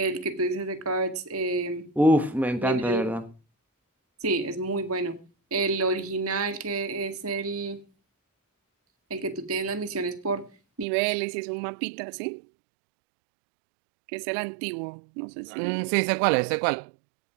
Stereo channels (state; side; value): drops out; left; at 10.9 s